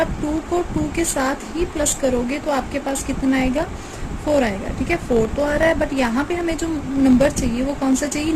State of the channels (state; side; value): identical; both; correlation 1.00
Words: 2 को 2 के साथ ही प्लस करोगे तो आपके पास कितना आएगा 4 आएगा। ठीक है, 4 तो आ रहा है, बट यहाँ पे हमें जो नंबर चाहिए वो कौन सा चाहिए,